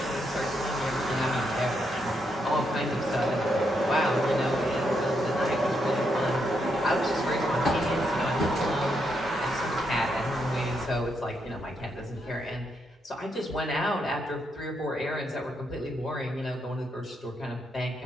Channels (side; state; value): both; normal; correlation 0.79